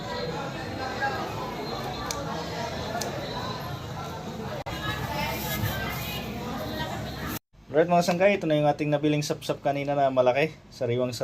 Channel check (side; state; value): both; identical; correlation 1.00